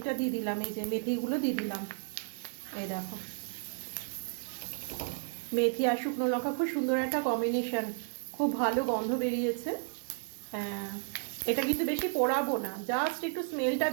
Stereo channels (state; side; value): silent; left; digital silence